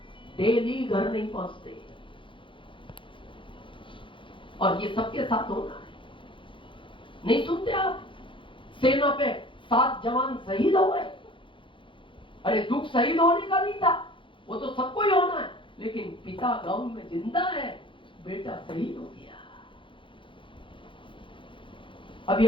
डेली घर नहीं पहुंचते और ये सबके साथ होना है। नहीं सुनते आप? सेना पे 7 जवान शहीद हो गए। अरे दुख शहीद होने का नहीं था, वो तो सबको ही होना है, लेकिन पिता गांव में जिंदा है, बेटा शहीद हो गया। अभी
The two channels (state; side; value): late; right; 0.25 ms